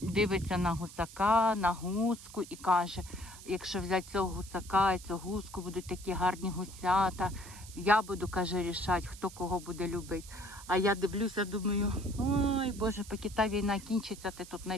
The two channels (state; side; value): noise; right; hiss, 16 dB below the sound